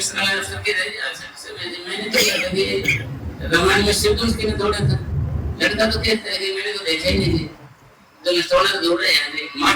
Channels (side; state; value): both; identical; correlation 1.00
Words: वाला अफसर के रहे मैंने तो लगा रामायण में शिव उसके ने तोड़ा था, लड़का तो कहता है कि मैंने तो देखा ही नहीं थी, तो ये तोड़ा तो दौड़ रहे हैं